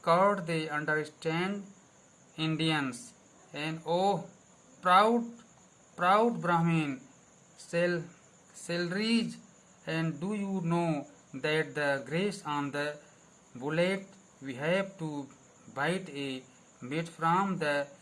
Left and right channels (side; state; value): both; identical; correlation 1.00